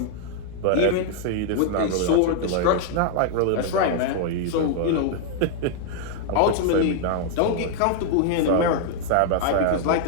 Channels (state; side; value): different; both; correlation 0.00